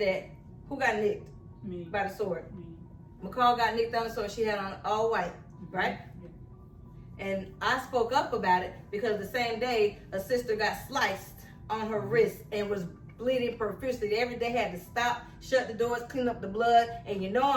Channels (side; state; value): both; identical; correlation 1.00